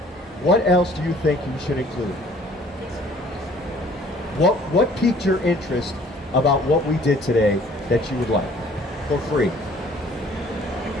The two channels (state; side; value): normal; both; correlation 0.56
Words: what else do you think you should include? What piqued your interest about what we did today that you would like for free?